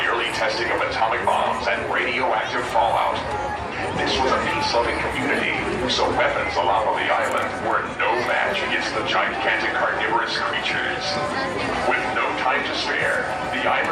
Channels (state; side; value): identical; both; correlation 1.00